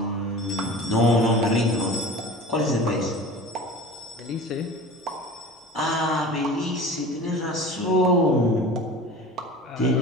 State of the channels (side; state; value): both; normal; correlation 0.38